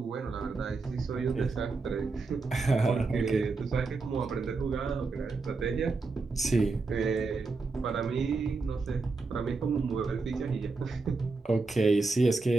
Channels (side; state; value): left; quieter; 4.0 dB